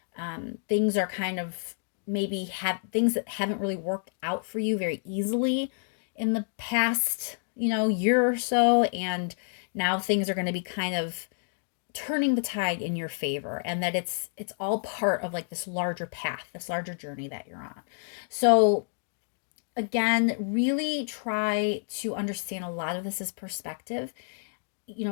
Things are kind of maybe have things that haven't really worked out for you very easily in the past, year or so. And now things are going to be kind of turning the tide in your favor, and that it's all part of like this larger path, this larger journey that you're on. So again, really try to understand a lot of this is perspective.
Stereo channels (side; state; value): right; silent; digital silence